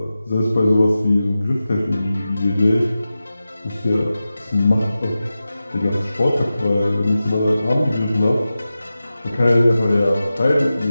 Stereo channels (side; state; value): both; inverted; correlation -0.94